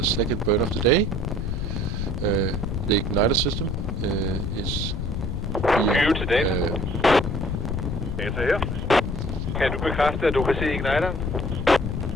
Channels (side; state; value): left; noise; rumble, 2 dB below the sound